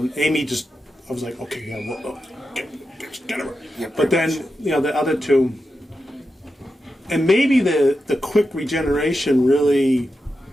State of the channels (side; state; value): both; normal; correlation 0.89